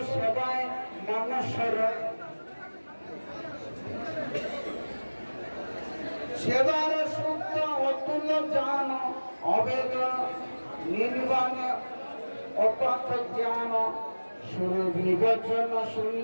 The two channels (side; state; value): both; inverted; correlation -1.00